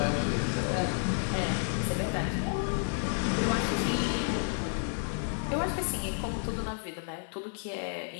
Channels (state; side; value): silent; right; 57 dB below the other